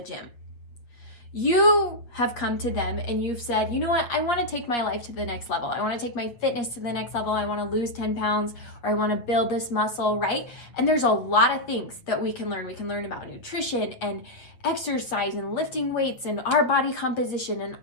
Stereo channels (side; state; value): right; late; 8.2 ms